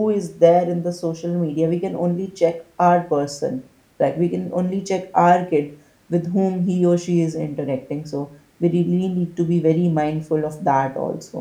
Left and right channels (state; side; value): identical; both; correlation 1.00